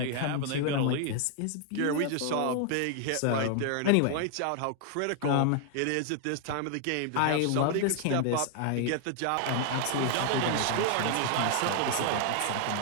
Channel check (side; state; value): both; different; correlation 0.00